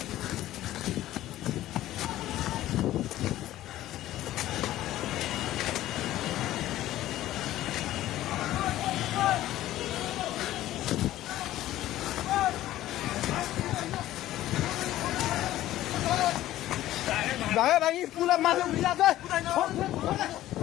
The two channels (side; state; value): right; quieter; 14.4 dB